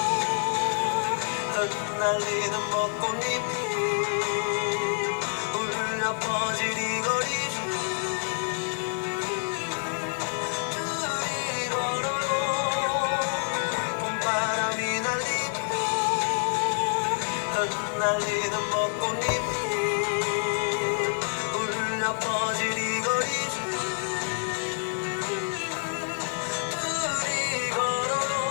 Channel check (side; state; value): right; silent; digital silence